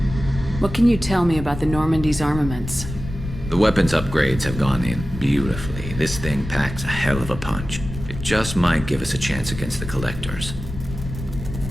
What can you tell me about the Normandy's armaments? The weapons upgrades have gone in beautifully. This thing packs a hell of a punch. It just might give us a chance against the Collectors.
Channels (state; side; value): noise; left; rumble, 9 dB below the sound